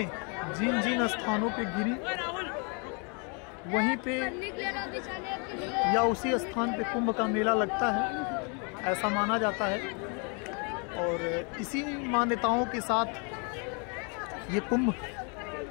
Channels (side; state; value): right; quieter; 35.5 dB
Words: जिन जिन स्थानों पे गिरी वहीं पे या उसी स्थान पे कुंभ का मेला लगता है, ऐसा माना जाता है। और इसी मान्यताओं के साथ ये कुंभ